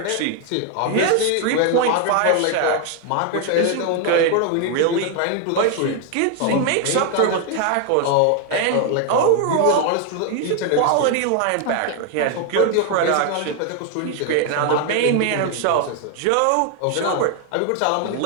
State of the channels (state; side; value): different; both; correlation 0.00